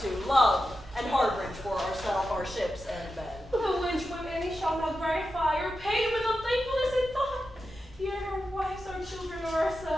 to love and harborage for ourselves, our ships, and men. The which when any shall not gratify or pay with unthankfulness in thought, yet our wives, our children, or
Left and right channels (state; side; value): normal; both; correlation 0.90